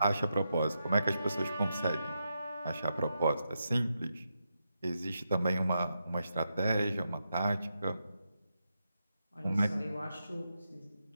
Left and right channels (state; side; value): inverted; both; correlation -0.85